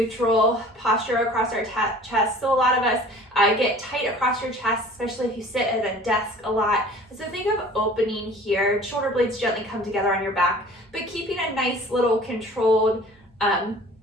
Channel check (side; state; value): both; normal; correlation 0.47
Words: posture across our chest. So a lot of us get tight across your chest, especially if you sit at a desk a lot. So think of opening here, shoulder blades gently come together on your back, but keeping a nice little controlled